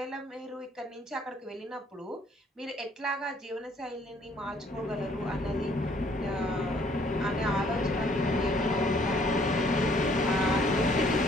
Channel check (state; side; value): normal; both; correlation 0.62